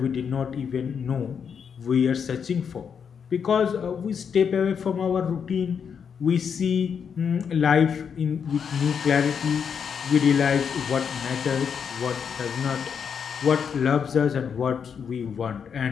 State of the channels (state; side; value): quieter; right; 7.0 dB